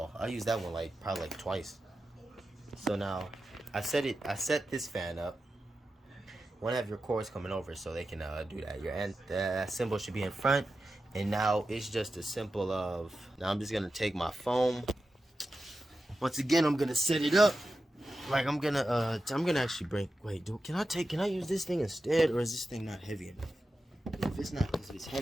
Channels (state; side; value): normal; both; correlation 0.92